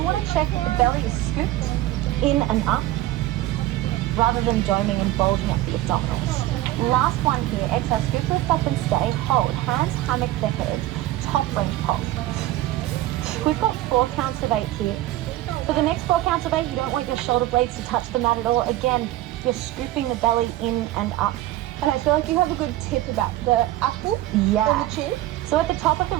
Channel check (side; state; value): left; quieter; 15.5 dB